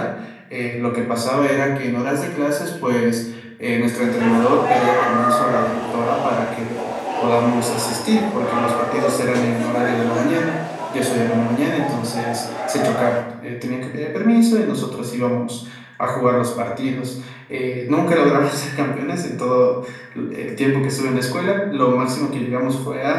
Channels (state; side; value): identical; both; correlation 1.00